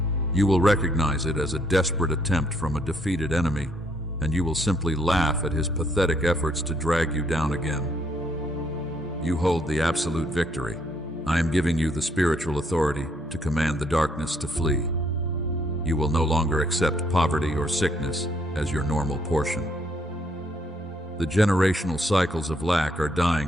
You will recognize it as a desperate attempt from a defeated enemy, and you will simply laugh at his pathetic efforts to drag you down again. You hold the absolute victory. I am giving you the spiritual authority to command the darkness to flee. You will no longer accept poverty or sickness as your normal portion. The generational cycles of lack are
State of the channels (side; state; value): both; normal; correlation 0.70